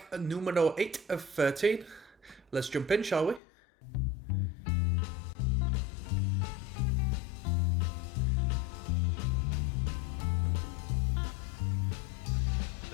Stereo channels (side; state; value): right; drops out; at 3.4 s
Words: numero 8 of 13. Let's jump in, shall we?